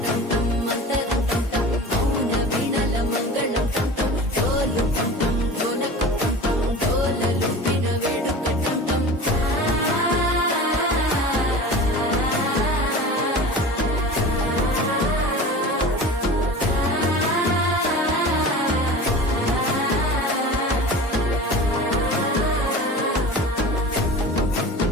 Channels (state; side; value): normal; both; correlation 0.36